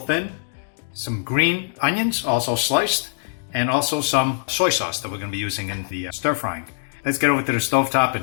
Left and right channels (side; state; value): right; silent; digital silence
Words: some green onions, also sliced, and also some soy sauce that we're going to be using in the stir-frying. Let's get over to the stovetop